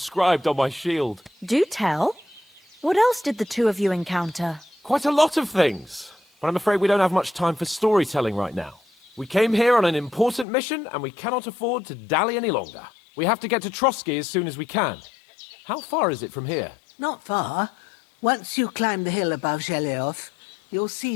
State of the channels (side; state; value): right; drops out; at 10.5 s